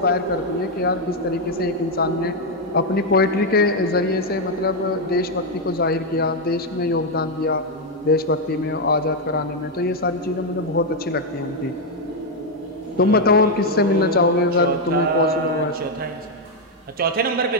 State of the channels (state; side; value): normal; both; correlation 0.02